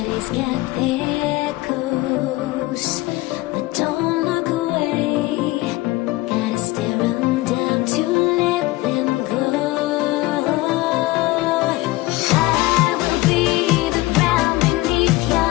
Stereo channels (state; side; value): quieter; right; 19.5 dB